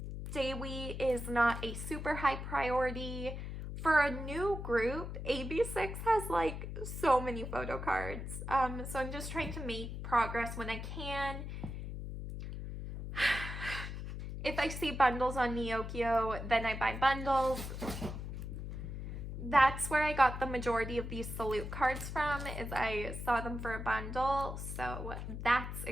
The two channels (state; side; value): noise; left; hum, 6 dB below the sound